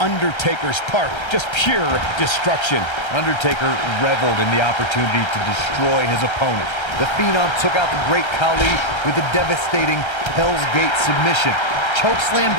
part. Just pure destruction. Undertaker reveled in the opportunity to destroy his opponent. The Phenom took out the Great Khali with a devastating Hell's Gate submission, chokeslammed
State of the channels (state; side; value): late; right; 1.3 ms